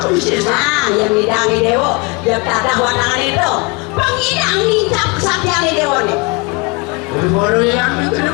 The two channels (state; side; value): quieter; right; 28.6 dB